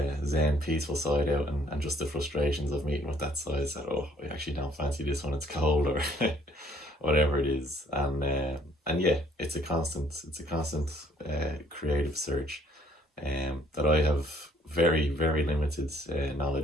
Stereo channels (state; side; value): normal; both; correlation 0.63